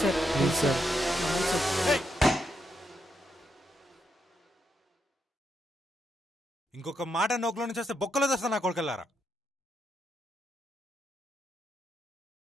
సార్ ప్లీజ్ సార్. ఇంకొక మాట నోకులో నుంచి వస్తే బొక్కలో తెస్తా నా కొడుకెళ్ళారా.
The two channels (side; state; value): both; normal; correlation 0.81